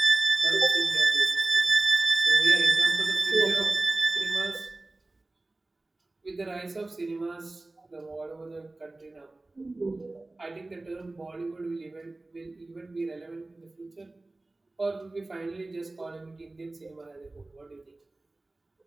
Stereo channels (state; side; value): quieter; left; 3.0 dB